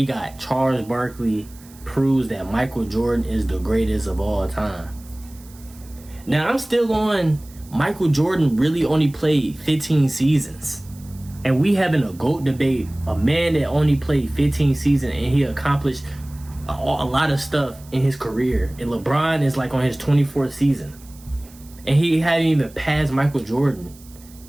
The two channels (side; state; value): right; noise; hiss, 24 dB below the sound